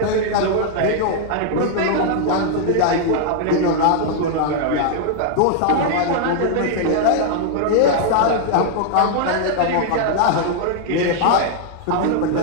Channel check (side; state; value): both; different; correlation 0.00